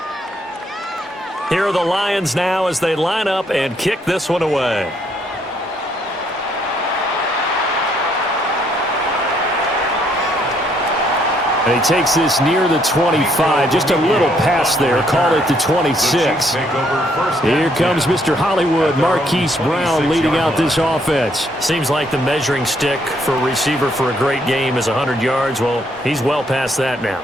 Here are the Lions now as they line up and kick this one away. And he takes this near the 25. Just a little pass there. Call it the 26. Here comes Mr. Hollywood, Marquise Brown, leading out this offense. Seems like the measuring stick for a receiver for a great game is 100 yards. Well, he's well past that now.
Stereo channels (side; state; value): both; normal; correlation 0.70